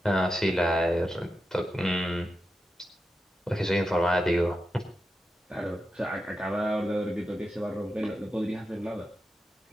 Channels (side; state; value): both; normal; correlation 0.89